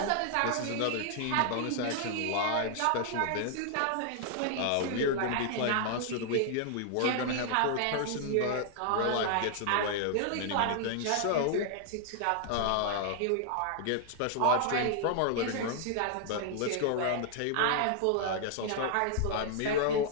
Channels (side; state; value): both; different; correlation 0.00